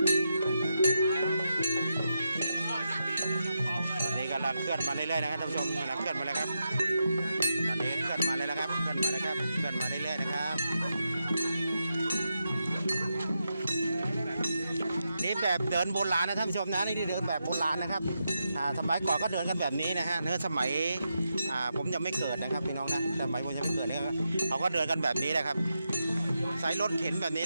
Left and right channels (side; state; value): both; inverted; correlation -0.86